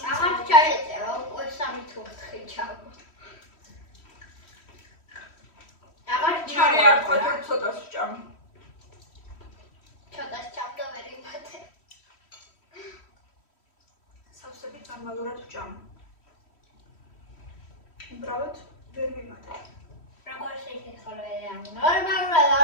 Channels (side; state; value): right; late; 3.1 ms